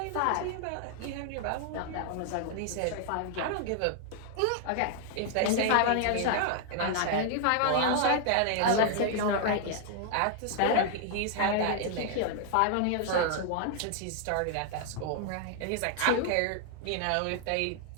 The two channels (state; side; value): different; both; correlation 0.00